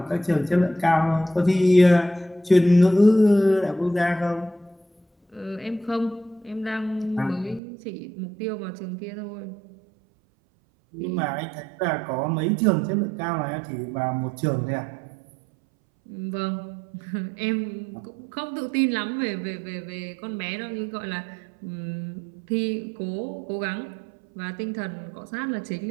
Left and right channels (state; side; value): drops out; left; at 7.6 s